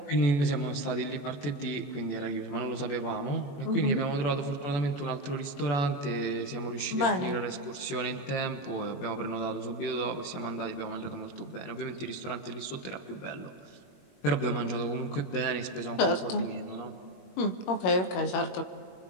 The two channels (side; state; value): right; late; 21 ms